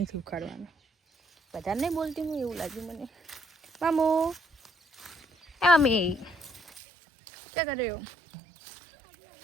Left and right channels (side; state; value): left; drops out; at 6.8 s